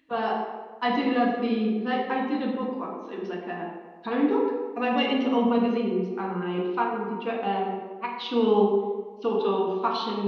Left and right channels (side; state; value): both; identical; correlation 1.00